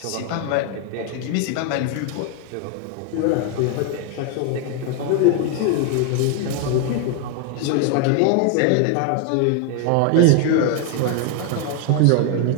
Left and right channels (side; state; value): both; different; correlation 0.01